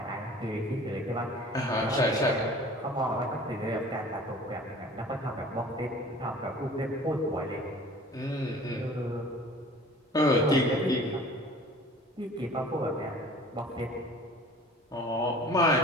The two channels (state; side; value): normal; both; correlation 0.46